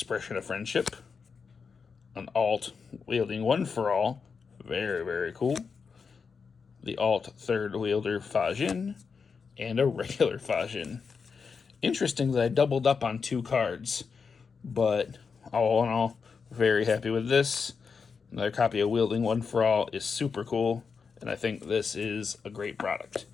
of friendship, an alt wielding one for all, very, very cool, the alt third wielder Fajin, and a regular Fajin. Interesting that I doubled up on 2 cards, but all in all, very happy with this. Another copy of Wielding One for All is super cool, and I think this is a great product.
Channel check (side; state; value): right; quieter; 5.5 dB